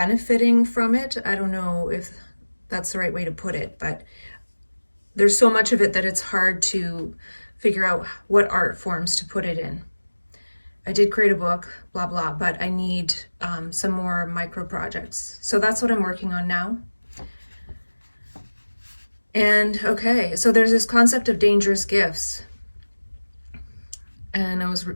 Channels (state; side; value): inverted; both; correlation -1.00